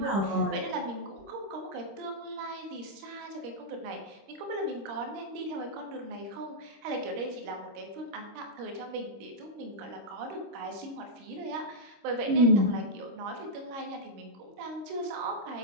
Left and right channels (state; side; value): late; left; 26 ms